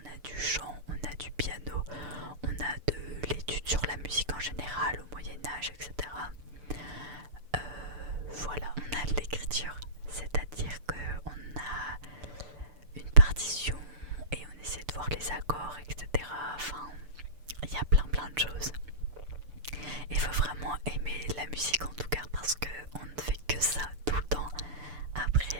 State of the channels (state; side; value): late; left; 6.8 ms